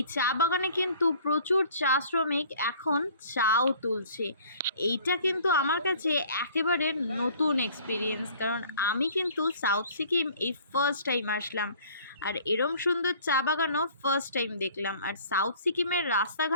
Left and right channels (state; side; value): inverted; both; correlation -0.52